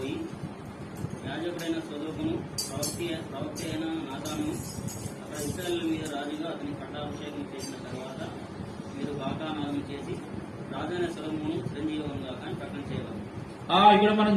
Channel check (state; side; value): identical; both; correlation 1.00